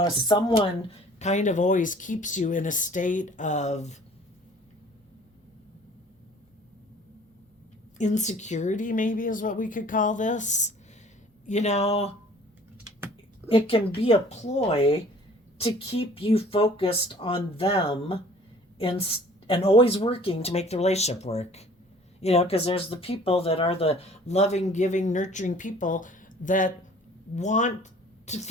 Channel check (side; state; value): both; normal; correlation 0.51